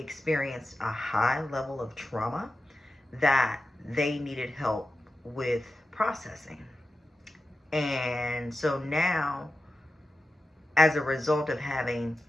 a high level of trauma that they needed help with processing. And so now, as a result of having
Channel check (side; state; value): both; normal; correlation 0.92